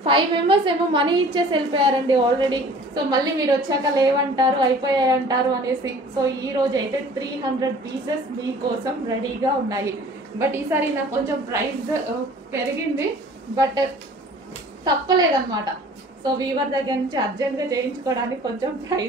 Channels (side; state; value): both; normal; correlation 0.48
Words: 5 మెంబర్స్ ఏమో మనీ ఇచ్చేసి వెళ్ళిపోయారండి ఆల్రెడీ. సో మళ్ళీ మీరు వచ్చాక లేవంటారు, అయిపోయాయి అంటారు అనేసి. సో ఈ రోజు అయితే 300 పీసెస్ మీకోసం రెడీగా ఉన్నాయి. బట్ ఈసారి నాకు కొంచెం ప్రైస్ పెరిగింది, బట్ తప్పలేదన్నమాట. సో వీవర్ దగ్గర నుంచి అర్జెంట్గా చేయించుకోవడానికి కొంచెం